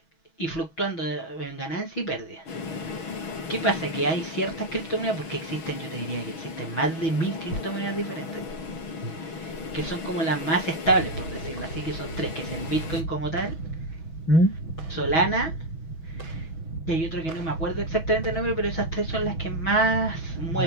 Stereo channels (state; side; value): late; right; 6.2 ms